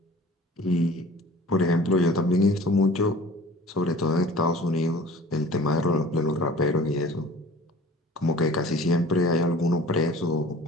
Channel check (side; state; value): both; normal; correlation 0.45